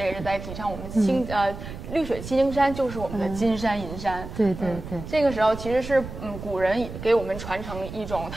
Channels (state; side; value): noise; right; rumble, 10 dB below the sound